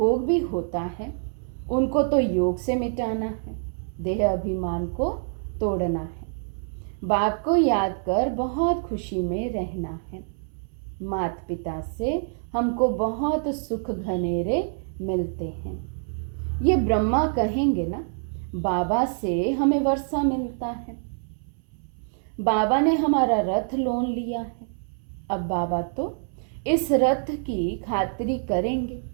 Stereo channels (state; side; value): silent; left; 61 dB below the other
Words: भी होता है, उनको तो योग से मिटाना है, देह अभिमान को तोड़ना है। बाप को याद कर बहुत खुशी में रहना है। माता पिता से हमको बहुत सुख घनेरे मिलते हैं। ये ब्रह्मा कहेंगे ना, बाबा से हमें वर्षा मिलता है। बाबा ने हमारा रथ लोन लिया है, अब बाबा तो इस रथ की खातिरी करेंगे।